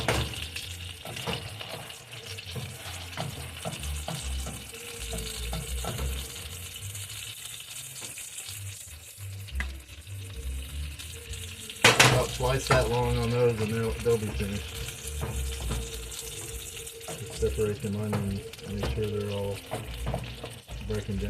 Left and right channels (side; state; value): both; identical; correlation 1.00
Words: About twice that long on those and they'll be finished. Just separate them onions, make sure they're all breaking